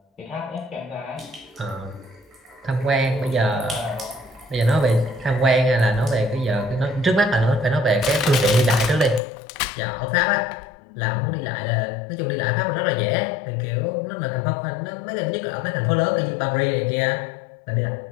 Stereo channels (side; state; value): right; drops out; at 9.2 s